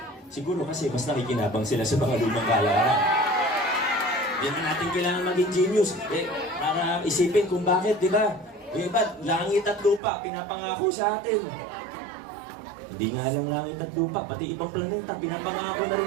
Siguro kasi mas nakikinabang sila sa mga lumang kalakaran. Yan na natin kailangan maging genius. Para isipin kung bakit, di ba? Yung iba, langit at lupa, pinapangako sa atin. Hindi nga lang langit at lupa, pati ibang planeta, pinapangako na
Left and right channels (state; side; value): drops out; left; at 10.0 s